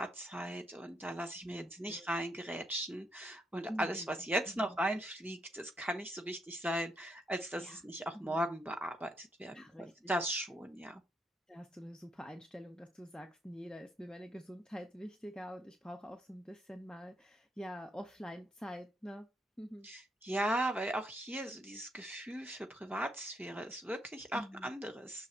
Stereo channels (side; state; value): both; normal; correlation 0.76